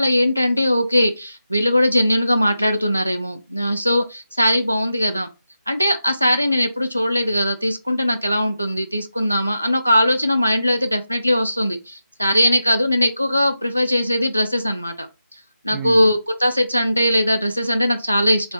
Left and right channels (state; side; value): inverted; both; correlation -0.90